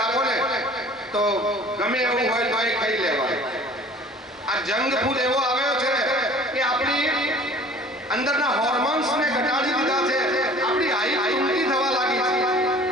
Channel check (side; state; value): both; normal; correlation 0.48